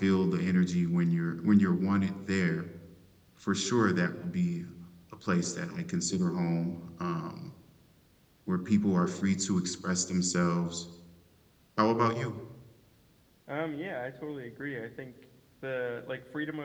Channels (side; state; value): both; identical; correlation 1.00